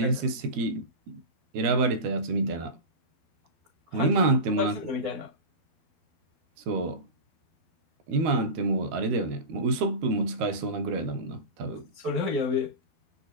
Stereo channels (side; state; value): left; late; 13 ms